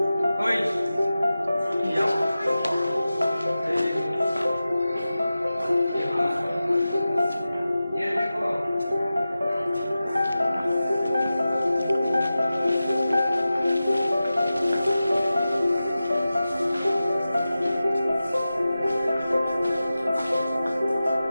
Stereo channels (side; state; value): both; inverted; correlation -0.94